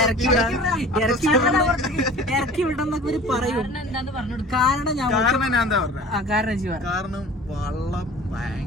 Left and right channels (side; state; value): both; normal; correlation 0.43